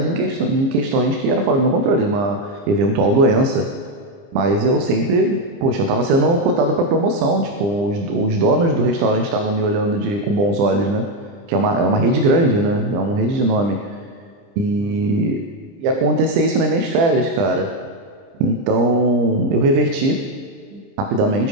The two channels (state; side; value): late; left; 30 ms